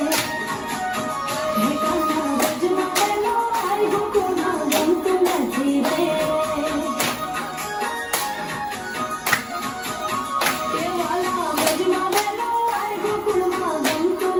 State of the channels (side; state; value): both; identical; correlation 1.00